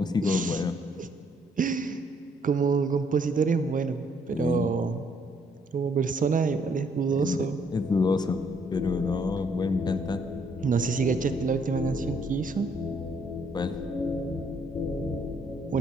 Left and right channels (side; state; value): both; normal; correlation 0.67